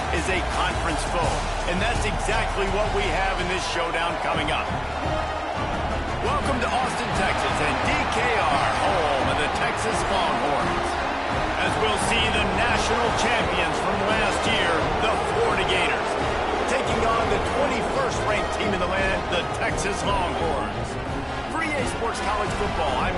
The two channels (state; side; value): identical; both; correlation 1.00